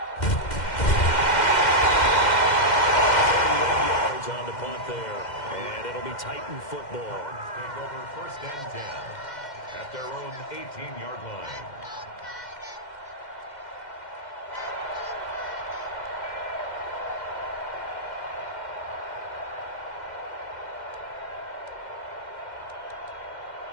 On the punt there, and it'll be Titan football. Take over 1st and 10 at their own 18-yard line.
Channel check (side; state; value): right; late; 2.1 ms